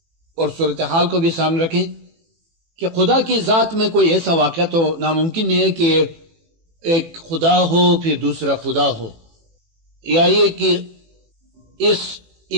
اور صورتحال کو بھی سامنے رکھیں کہ خدا کی ذات میں کوئی ایسا واقعہ تو ناممکن نہیں ہے کہ ایک خدا ہو پھر دوسرا خدا ہو، یا یہ کہ اس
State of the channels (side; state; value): left; late; 18 ms